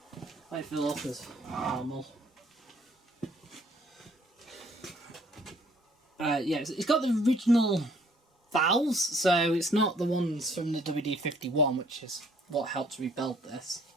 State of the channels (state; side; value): normal; both; correlation 0.61